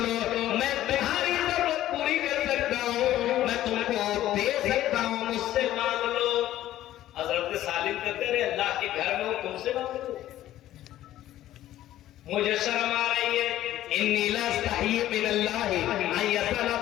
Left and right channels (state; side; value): quieter; right; 13.6 dB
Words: میں تمہاری ضرورت پوری کر سکتا ہوں، میں تم کو دے سکتا ہوں، مجھ سے مانگ لو۔ حضرت سالم کہتے رہے اللہ کے گھر میں ہو تم سے مانگ لو، مجھے شرم آ رہی ہے، انی لا استحی من اللہ ان یسأل